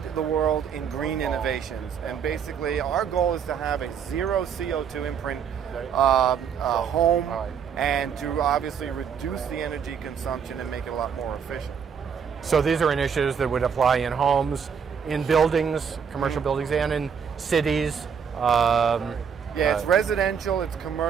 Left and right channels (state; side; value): quieter; left; 7.1 dB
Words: the world in green innovations. And basically, our goal is to have a zero CO2 imprint home, and to obviously reduce the energy consumption and make it a lot more efficient. So these are initiatives that would apply in homes, in buildings, commercial buildings, and in cities. It's residential, it's